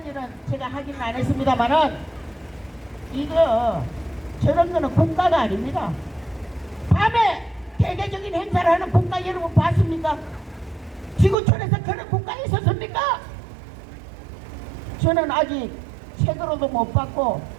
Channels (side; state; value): left; drops out; at 11.4 s